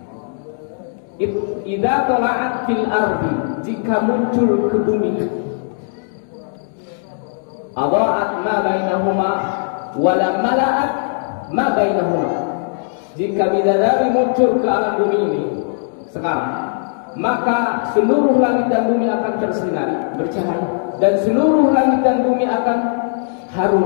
idza tala'at fil ardi, jika muncul ke bumi, adha'at ma bainahuma wa lam mala'at ma bainahuma. Jika bidadari muncul ke alam bumi ini sekarang, maka seluruh langit dan bumi akan tersinari, bercahaya, dan seluruh langit dan bumi akan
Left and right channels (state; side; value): silent; right; digital silence